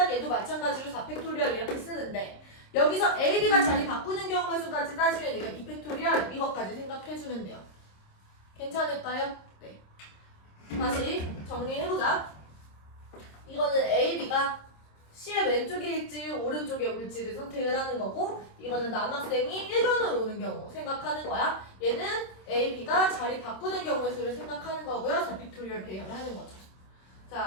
얘도 마찬가지로 4팩토리얼 이렇게 쓰는데 여기서 A, B가 자리 바꾸는 경우의 수까지 따지면 이거 2팩토리얼 이것까지 생각해주면 돼요. 괜찮을까요? 네. 다시 정리해보자. 이거는 A, B가 C의 왼쪽에 있지 오른쪽에 올지를 선택을 하는 거고 이거는 남학생이 1번으로 오는 경우 생각하는 거야. 얘는 A, B가 자리 바꾸는 경우의 수를 생각하는 거고요. 4팩토리얼 배열하는 거죠.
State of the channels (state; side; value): late; right; 26 ms